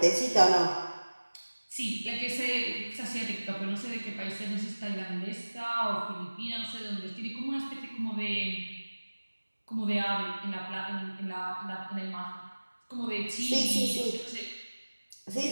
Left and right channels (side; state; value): both; inverted; correlation -1.00